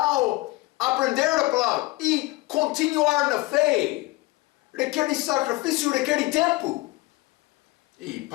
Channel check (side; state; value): right; quieter; 21.1 dB